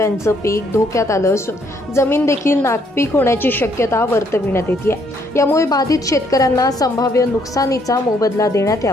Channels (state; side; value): normal; both; correlation 0.69